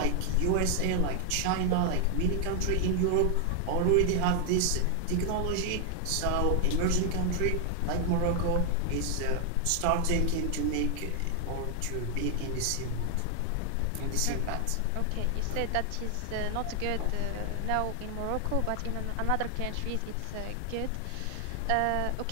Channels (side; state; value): both; different; correlation 0.00